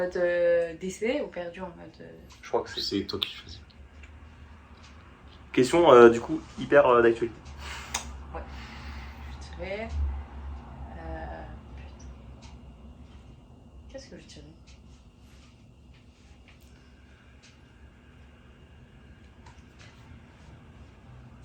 décédé ou perdu en mode. je crois que c'est. C'est toi qui choisis. Question du coup hyper d'actualité. Je dirais. Putain. Qu'est-ce que je dirais?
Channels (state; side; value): identical; both; correlation 1.00